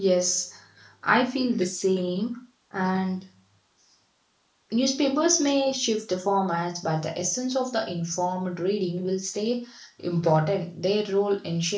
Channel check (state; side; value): identical; both; correlation 1.00